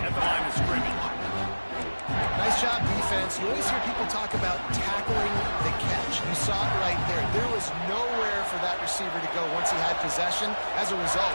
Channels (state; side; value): inverted; both; correlation -1.00